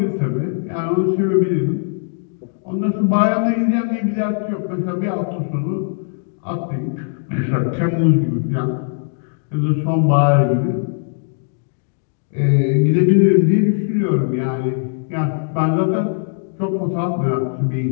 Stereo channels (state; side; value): silent; right; digital silence